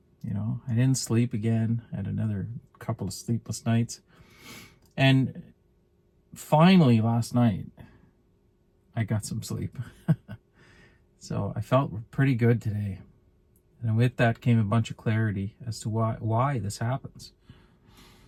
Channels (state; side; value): identical; both; correlation 1.00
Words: I didn't sleep again. I had another couple of sleepless nights, and finally last night I got some sleep. So I felt pretty good today, and with that came a bunch of clarity as to why this happens.